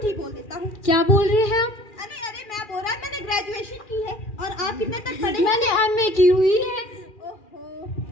ही बोल देता हूँ। क्या बोल रहे हैं आप? अरे अरे, मैं बोल रहा मैंने ग्रेजुएशन की है। और आप कितने तक पढ़े? मैंने एमए की हुई है। ओहो।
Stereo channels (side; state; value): right; late; 2.4 ms